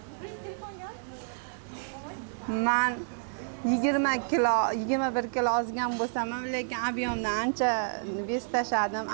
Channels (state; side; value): silent; left; digital silence